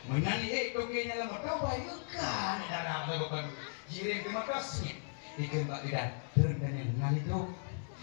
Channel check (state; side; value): silent; right; digital silence